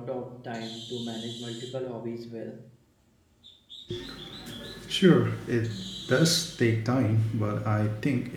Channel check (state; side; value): identical; both; correlation 1.00